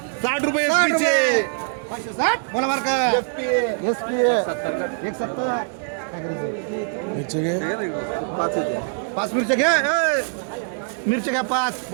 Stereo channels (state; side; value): silent; left; digital silence